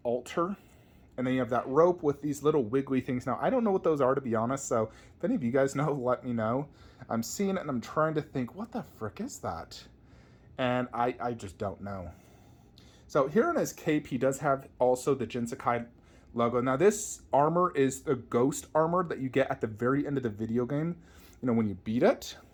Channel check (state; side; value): identical; both; correlation 1.00